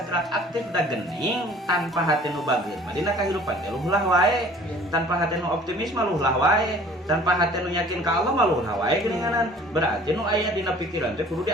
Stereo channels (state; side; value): normal; both; correlation 0.50